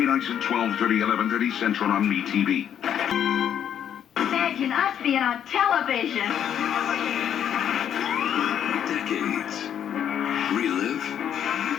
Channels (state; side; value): quieter; right; 9.4 dB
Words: nights at 12:30, 11:30 Central on MeTV. Imagine us being on television. Decades. Relive,